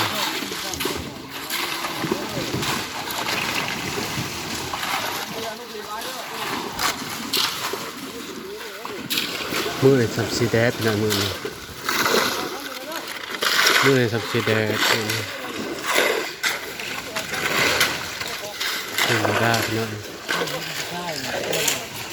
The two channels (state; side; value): identical; both; correlation 1.00